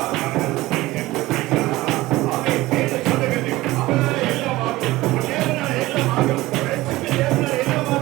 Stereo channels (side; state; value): left; quieter; 18.3 dB